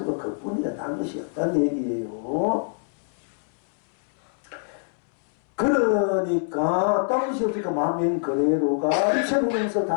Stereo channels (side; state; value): right; silent; 62 dB below the other